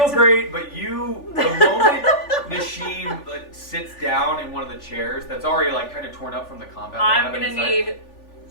to... great, but the moment Nishim sits down in one of the chairs that's already like kind of torn up from the combat. I'm gonna need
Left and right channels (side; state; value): right; late; 3.4 ms